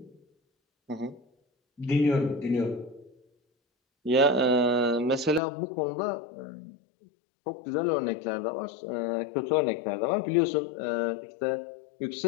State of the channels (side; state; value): right; drops out; at 5.4 s